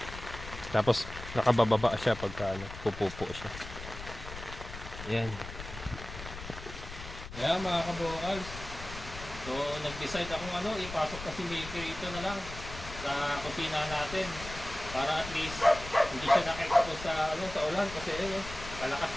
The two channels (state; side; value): noise; left; rumble, 11 dB below the sound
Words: Tapos, nakabababa siya pagka ano, pupupo siya. Yan. Kaya mga kabukals. So, nag-decide akong ipasok kasi Milky ito na lang sa kusina natin para at least hindi siya na-expose sa ulan kasi kalakas